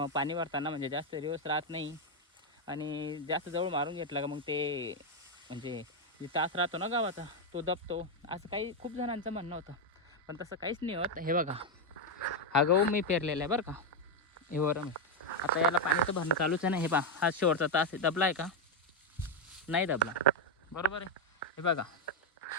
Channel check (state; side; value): normal; both; correlation 0.04